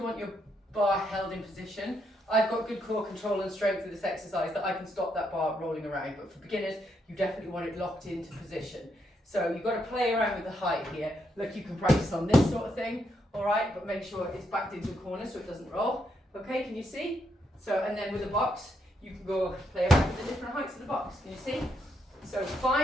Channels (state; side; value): normal; both; correlation 0.78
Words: want your bar held in position. I've got good core control and strength with this exercise that I can stop that bar rolling around, but for beginners, you definitely want it locked into position. So you've got to play around with the height here. Look, you can practice on this sort of thing, all right, but make sure it's backed into a corner so it doesn't roll. Okay, can you see? So, and then with the box, you can go play around with the different heights of the box. Can you see? So